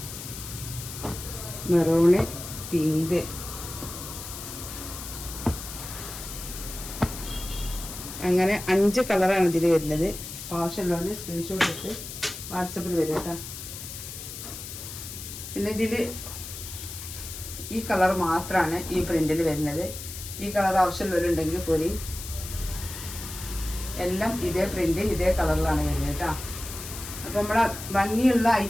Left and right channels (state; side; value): noise; left; hiss, 10 dB below the sound